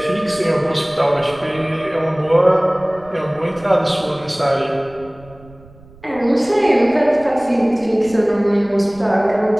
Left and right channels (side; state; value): right; noise; rumble, 23 dB below the sound